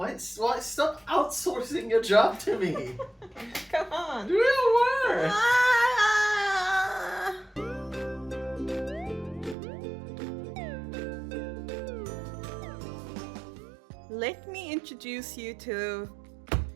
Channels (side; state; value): left; drops out; at 9.6 s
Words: Stop outsourcing your job to me. Come on. Do your work. Let me introduce you to